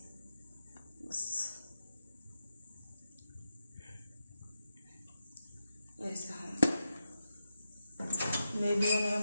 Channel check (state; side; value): inverted; both; correlation -0.87